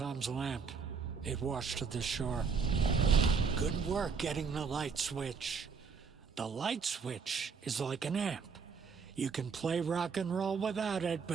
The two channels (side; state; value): left; quieter; 5.6 dB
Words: lamp. It washed to the shore. Good work getting the light switch. The light switch is like an amp. You can play rock and roll without it,